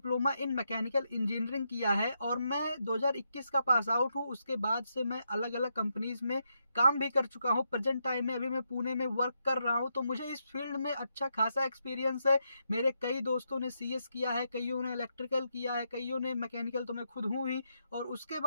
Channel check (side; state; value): both; inverted; correlation -0.82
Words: इन मैकेनिकल इंजीनियरिंग किया है और मैं 2021 का पास आउट हूँ। उसके बाद से मैं अलग अलग कंपनीज में काम भी कर चुका हूँ। प्रेजेंट टाइम में अभी मैं पुणे में वर्क कर रहा हूँ, तो मुझे इस फील्ड में अच्छा खासा एक्सपीरियंस है। मेरे कई दोस्तों ने सीएस किया है, कईयों ने इलेक्ट्रिकल किया है, कईयों ने मैकेनिकल, तो मैं खुद हूँ ही, और उसके